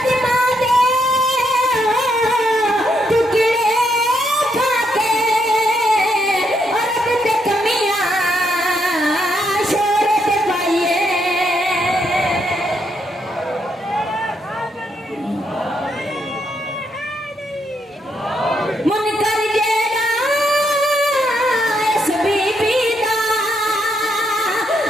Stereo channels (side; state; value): both; normal; correlation 0.77